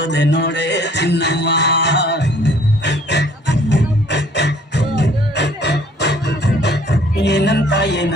ನೋಡೆ ಚಿನ್ನಮ್ಮ. ಏನಂತ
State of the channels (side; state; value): both; normal; correlation 0.57